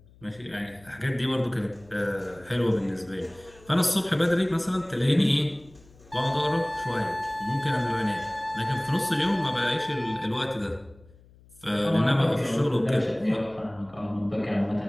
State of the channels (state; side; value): noise; left; hum, 26 dB below the sound